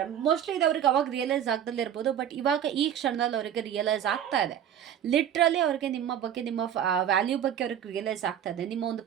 ಮೋಸ್ಟ್ಲಿ ಇದು ಅವ್ರಿಗೆ ಅವಾಗ ರಿಯಲೈಸ್ ಆಗ್ದಲ್ಲೇ ಇರ್ಬೋದು. ಬಟ್ ಇವಾಗ ಈ ಕ್ಷಣದಲ್ಲಿ ಅವರಿಗೆ ರಿಯಲೈಸ್ ಆಗ್ತಾ ಇದೆ. ಲಿಟ್ರಲಿ ಅವ್ರಿಗೆ ನಿಮ್ಮ ಬಗ್ಗೆ, ನಿಮ್ಮ ವ್ಯಾಲ್ಯೂ ಬಗ್ಗೆ ಅವ್ರಿಗೆ ರಿಯಲೈಸ್ ಆಗ್ತಾ ಇದೆ. ನಿಮ್ಮ ಒಂದು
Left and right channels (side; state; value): left; quieter; 9.7 dB